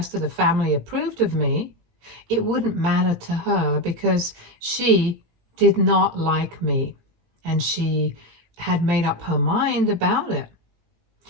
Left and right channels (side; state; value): left; late; 17 ms